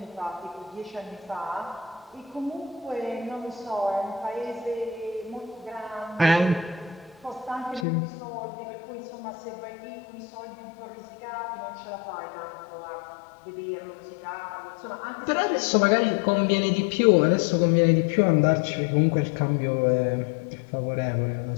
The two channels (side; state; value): right; drops out; at 7.9 s